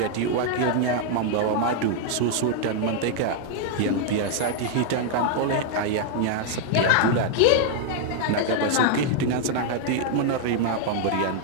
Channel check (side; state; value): both; different; correlation 0.00